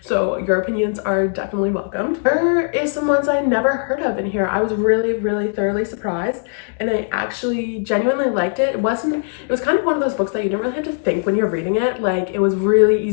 so your opinions are definitely welcomed. There is some ones I never heard of in here. I was really thoroughly surprised, and I actually genuinely liked it. It was kind of one of those books that you didn't really have to think when you're reading it. Like, it was really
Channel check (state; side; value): silent; right; digital silence